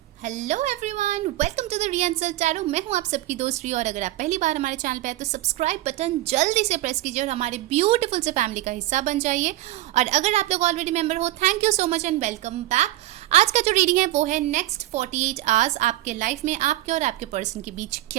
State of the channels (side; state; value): left; quieter; 16.0 dB